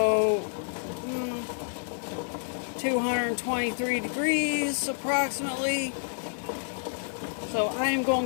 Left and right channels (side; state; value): right; silent; digital silence